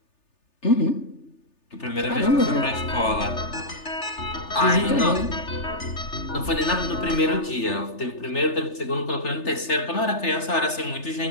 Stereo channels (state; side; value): late; right; 3.3 ms